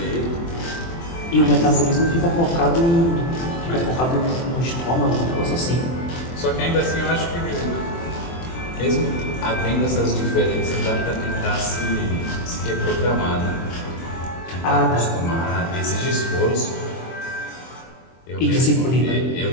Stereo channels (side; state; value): right; late; 23 ms